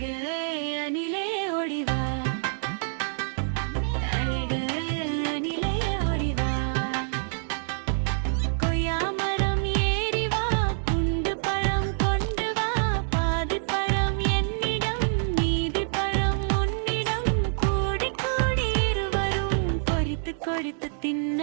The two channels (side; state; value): left; silent; digital silence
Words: அணிலே ஓடிவா, அழகு அணிலே ஓடிவா, கொய்யா மரம் ஏறி வா, குண்டு பழம் கொண்டு வா, பாதி பழம் என்னிடம் மீதி பழம் உன்னிடம், கூடி கூடி இருவரும் கொறித்து கொறித்து